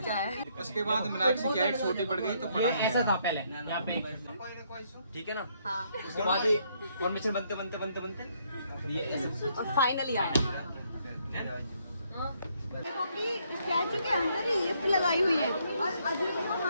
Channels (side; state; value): both; inverted; correlation -0.71